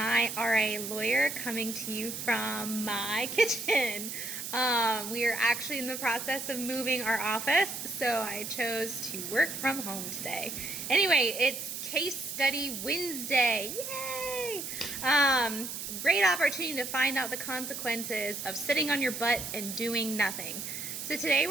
RA Lawyer coming to you from my kitchen. We are actually in the process of moving our office, so I chose to work from home today. Anyway, it's Case Study Wednesday. Yay! Great opportunity to find out the consequences of sitting on your butt and doing nothing. So today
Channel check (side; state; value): right; noise; hiss, 6 dB below the sound